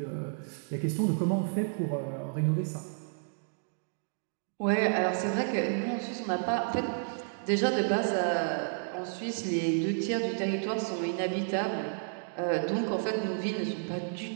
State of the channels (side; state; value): left; silent; digital silence